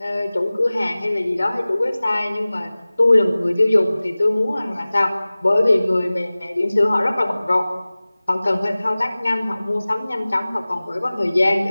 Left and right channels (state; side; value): inverted; both; correlation -0.98